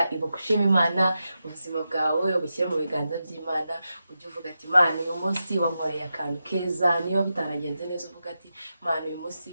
ibuka ushima Imana ubuzima bwawe ubushyire mu biganza by'Imana ujye uvuga ati Imana uyu munsi wankoreye akantu keza niba bitaragenze neza uvuga ati Imana uyu munsi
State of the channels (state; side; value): inverted; both; correlation -0.89